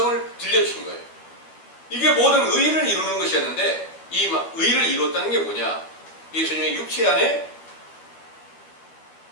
들려주신 거예요. 이게 모든 의를 이루는 것이었는데 이 의를 이뤘다는 게 뭐냐? 예수님의 육체 안에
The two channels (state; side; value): late; right; 12 ms